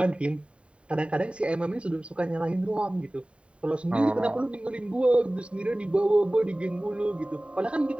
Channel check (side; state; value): left; late; 0.059 ms